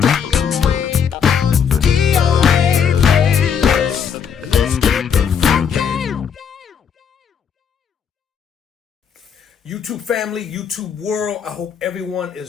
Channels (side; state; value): right; quieter; 7.3 dB